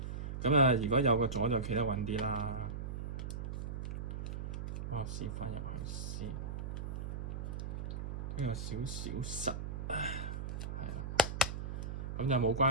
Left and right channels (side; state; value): right; noise; hum, 4 dB below the sound